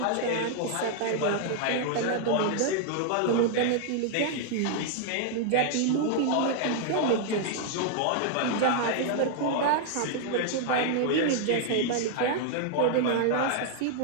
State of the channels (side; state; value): both; different; correlation -0.01